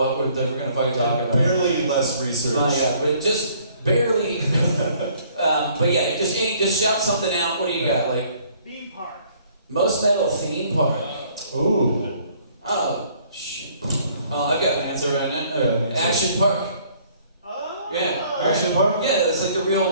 we're going to fucking talk about. Barely less research. My god, but just barely. But yeah, just shout something out. What do you got? Like Theme park. most metal theme park. Ooh. Oh shit. Oh, I've got an answer right now. Yeah. Action Park. Oh. Yeah. Action Park? Yeah, it's like it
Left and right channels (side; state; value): both; inverted; correlation -0.60